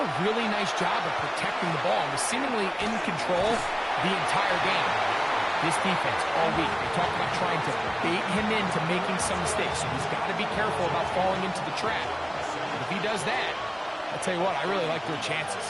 really nice job of protecting the ball and was seemingly in control the entire game. This defense all week, they talk about trying to bait him into making some mistakes, so he's got to be careful about falling into the trap. But if he does that, I'll tell you what, I really like their chances.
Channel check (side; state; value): both; identical; correlation 1.00